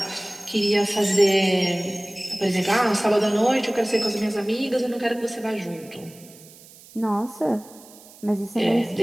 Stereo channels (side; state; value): right; noise; hiss, 22 dB below the sound